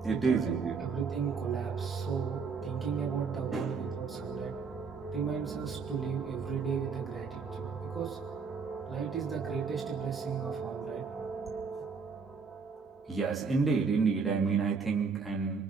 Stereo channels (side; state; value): left; quieter; 5.3 dB